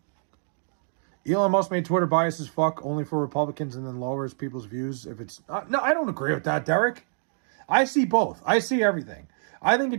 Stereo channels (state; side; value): silent; left; digital silence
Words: Elon Musk made Twitter biased as fuck, only for Republicans, and then lowers people's views if it's... no, I don't agree with that, Derek. I see both. I see everything. I think it